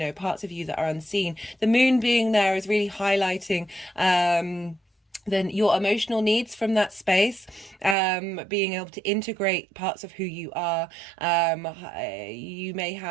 parts of you that are unseen. The moon being there is really highlighting then your emotional needs from that space, being able to integrate parts of who you are. You may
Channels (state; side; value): drops out; left; at 8.0 s